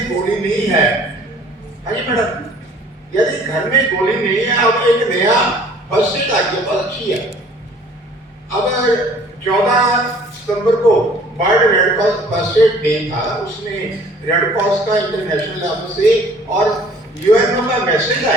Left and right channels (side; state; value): both; normal; correlation 0.53